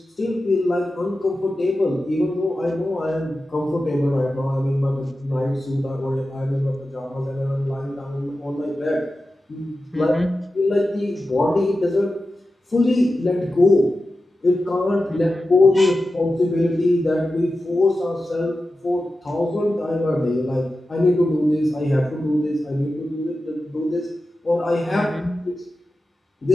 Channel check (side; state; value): both; normal; correlation 0.93